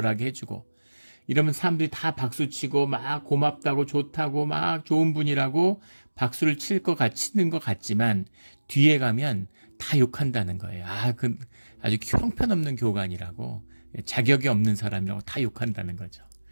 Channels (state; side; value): inverted; both; correlation -1.00